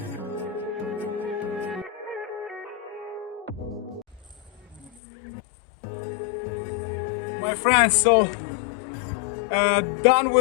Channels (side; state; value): right; drops out; at 4.9 s